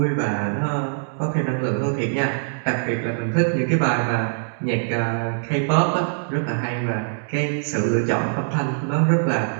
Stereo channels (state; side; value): silent; left; digital silence